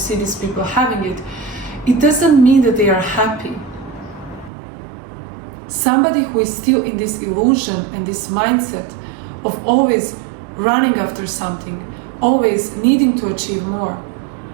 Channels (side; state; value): left; drops out; at 4.5 s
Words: these people having it. It doesn't mean that they are happy. Somebody who is still in this illusion and this mindset of always running after something, always needing to achieve more,